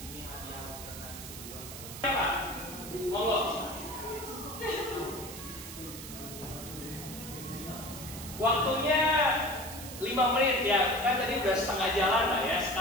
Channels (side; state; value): right; noise; hiss, 11 dB below the sound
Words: hadiah karena di sebulan. Apa? Monggo. Waktunya 5 menit ya, kan tadi udah setengah jalan lah ya.